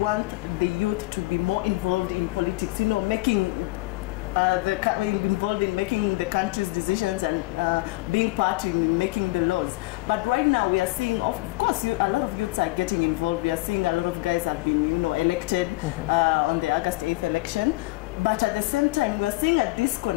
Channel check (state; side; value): quieter; right; 21.4 dB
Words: the youth to be more involved in politics, making involved in making the country's decisions and being part in making the laws. But right now we are seeing, of course, a lot of youths are getting involved. We are seeing a lot of guys have been, elected on the August 8th election. But at the same time, we are seeing a